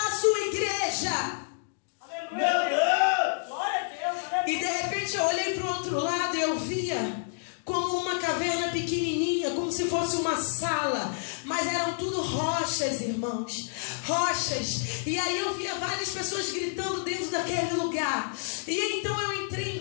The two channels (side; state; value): right; silent; digital silence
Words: a sua igreja. Aleluia. Meu Deus! Glória a Deus, aleluia. E de repente eu olhei para o outro lado e eu via como uma caverna pequenininha, como se fosse uma sala, mas eram tudo rochas, irmãos, rochas. E aí eu via várias pessoas gritando dentro daquele lugar. E então eu entrei